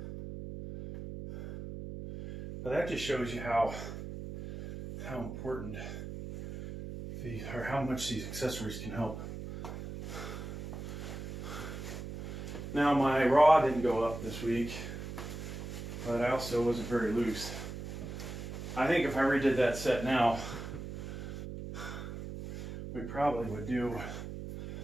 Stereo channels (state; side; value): noise; right; hum, 8 dB below the sound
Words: But that just shows you how important or how much these accessories can help. Now my raw didn't go up this week, but I also wasn't very loose. I think if I redid that set now, we probably would do,